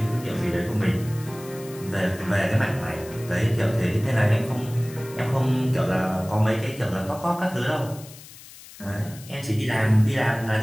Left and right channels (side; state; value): left; noise; hiss, 18 dB below the sound